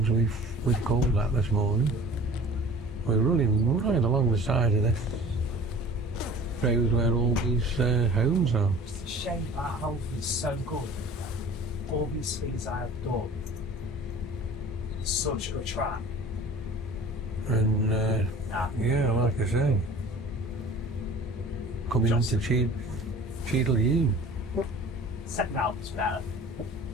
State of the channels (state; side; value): normal; both; correlation 0.44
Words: we've called at this morning. We're running right along the side of this road where all these homes are. It's a shame that house is so good. All these things I have done. It's such a good track. And yeah, like I say, coming into Cheadle-Hulme. Second album's better.